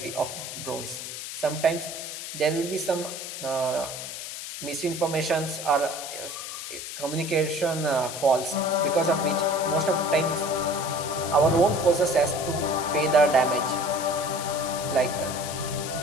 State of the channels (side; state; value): left; noise; hiss, 8 dB below the sound